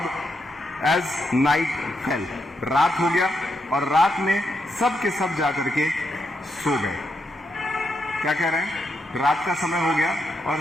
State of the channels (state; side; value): normal; both; correlation 0.81